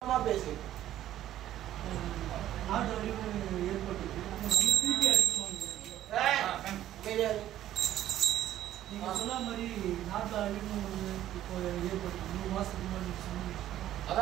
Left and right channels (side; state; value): left; quieter; 12.7 dB